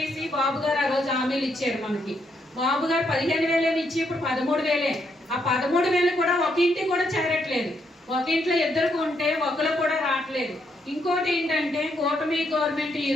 బాబు గారు ఆ రోజు హామీలు ఇచ్చారు మనకి. బాబు గారు 15,000 ఇచ్చి ఇప్పుడు 13,000. ఆ 13,000 కూడా ఒక ఇంటికి కూడా చేరట్లేదు, ఒక ఇంట్లో ఇద్దరికి ఉంటే ఒకరు కూడా రావట్లేదు. ఇంకోటి ఏంటంటే కూటమి గవర్నమెంట్ ఈ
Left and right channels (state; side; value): normal; both; correlation 0.76